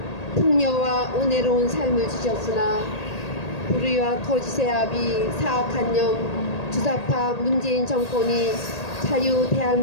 풍요와 은혜로운 삶을 주셨으나 불의와 거짓의 압이 사악한 영 주사파 문재인 정권이 자유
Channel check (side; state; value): right; late; 1.8 ms